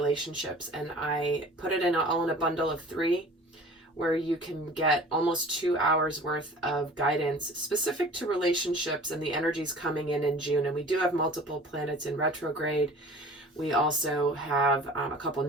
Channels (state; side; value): normal; both; correlation 0.44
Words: and I put it all in a bundle of 3, where you can get almost 2 hours worth of guidance specific to relationships and the energies coming in June. And we do have multiple planets in retrograde. We also have a couple